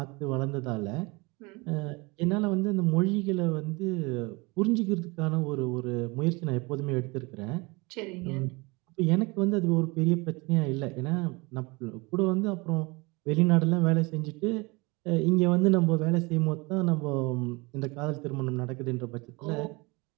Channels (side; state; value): left; quieter; 26.1 dB